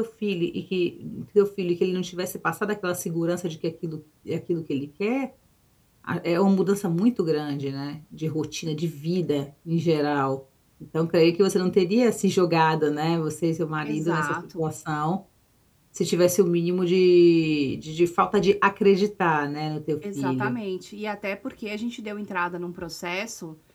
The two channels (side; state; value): both; identical; correlation 1.00